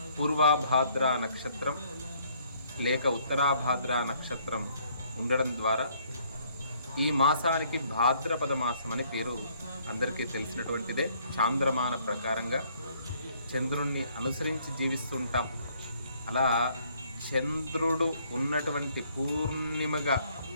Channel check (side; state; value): both; inverted; correlation -0.64